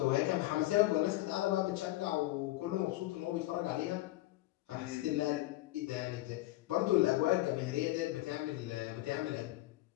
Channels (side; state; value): right; quieter; 17.6 dB